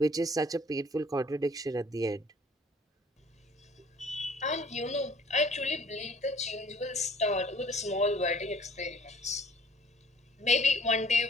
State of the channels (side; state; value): both; normal; correlation 0.55